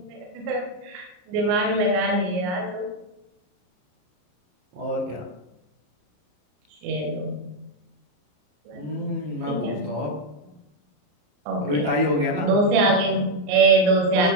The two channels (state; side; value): late; left; 34 ms